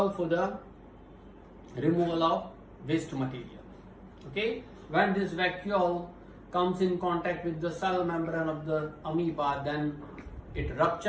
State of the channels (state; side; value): identical; both; correlation 1.00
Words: for the removal of waste material. Okay? When this vacuole comes in contact with the cell membrane of the amoeba, then it